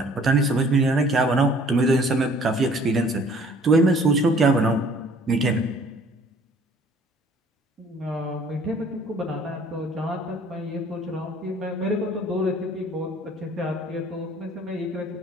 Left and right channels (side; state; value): both; normal; correlation 0.55